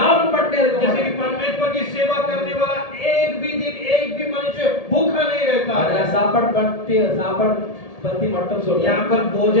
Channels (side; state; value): right; late; 1.7 ms